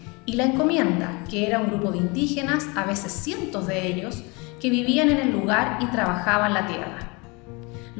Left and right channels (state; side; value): quieter; right; 28.0 dB